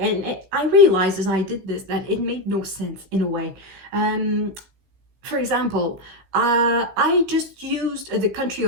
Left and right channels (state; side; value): late; left; 16 ms